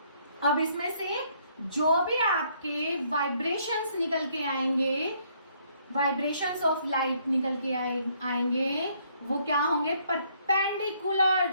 अब इसमें से जो भी आपके वाइब्रेशंस निकल के आएंगे, वाइब्रेशंस ऑफ लाइट निकल के आएंगे, वो क्या होंगे,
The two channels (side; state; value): both; inverted; correlation -0.67